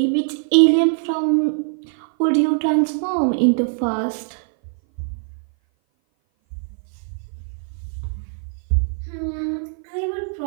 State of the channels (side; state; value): left; silent; 57 dB below the other